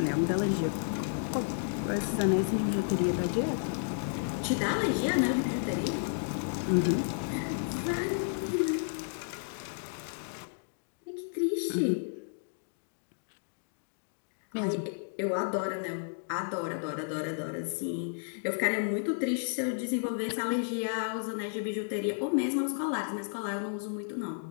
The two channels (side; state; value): right; silent; digital silence